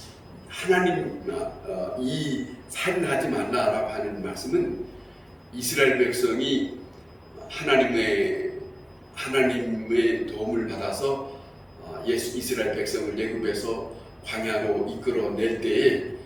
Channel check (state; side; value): identical; both; correlation 1.00